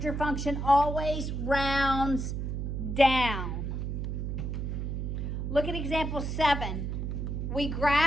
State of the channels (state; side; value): noise; right; hum, 2 dB below the sound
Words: function always rounds down. Look at example 7. We